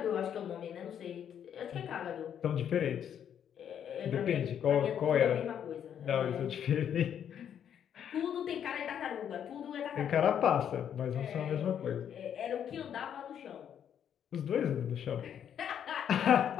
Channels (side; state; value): right; quieter; 9.0 dB